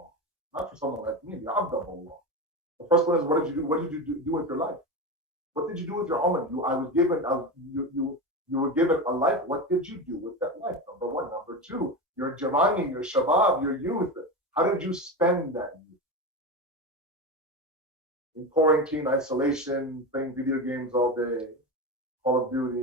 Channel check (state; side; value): normal; both; correlation 0.21